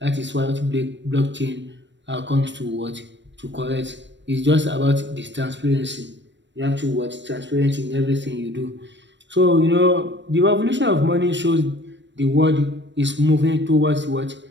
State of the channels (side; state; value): left; late; 0.53 ms